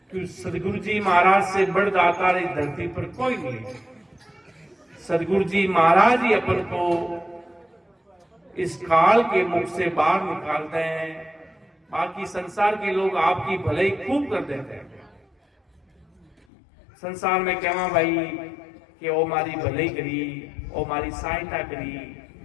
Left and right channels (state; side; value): drops out; right; at 16.4 s